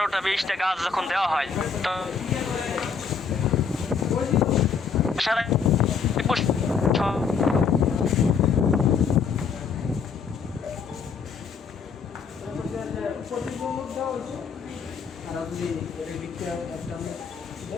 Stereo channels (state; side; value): quieter; right; 5.9 dB